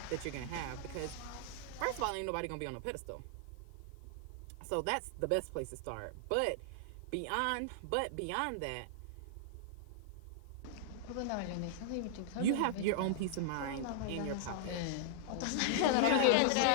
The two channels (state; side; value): different; both; correlation -0.01